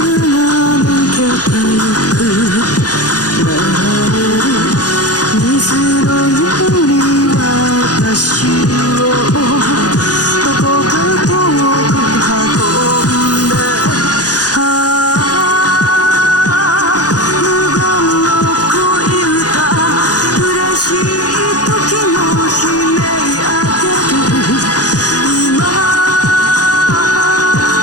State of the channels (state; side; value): late; right; 0.68 ms